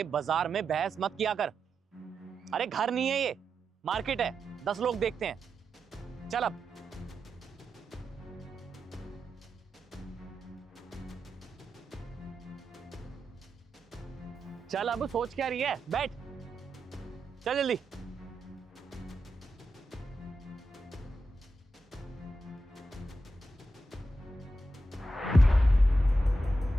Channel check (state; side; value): normal; both; correlation 0.88